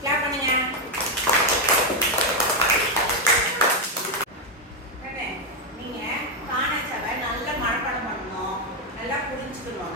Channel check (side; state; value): both; normal; correlation 0.05